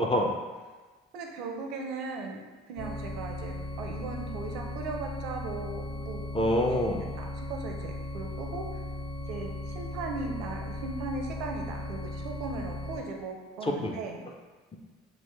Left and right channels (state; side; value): normal; both; correlation 0.51